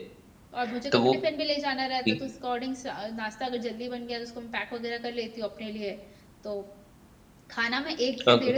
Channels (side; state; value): both; identical; correlation 1.00